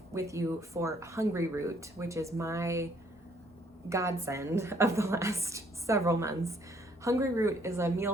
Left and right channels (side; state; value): both; normal; correlation 0.64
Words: with you for Hungry Root, which is my godsend of the last several months. Hungry Root is a